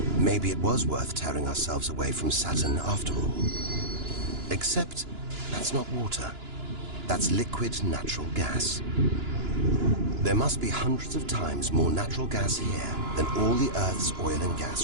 Maybe it was worth tearing ourselves away from Saturn after all. Except that's not water. That's liquid natural gas. There must be hundreds of times more natural gas here than all the Earth's oil and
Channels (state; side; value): late; left; 2.9 ms